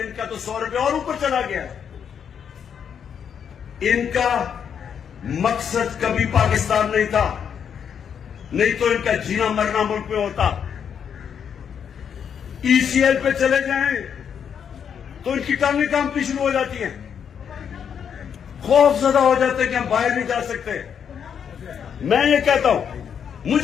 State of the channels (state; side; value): quieter; right; 7.7 dB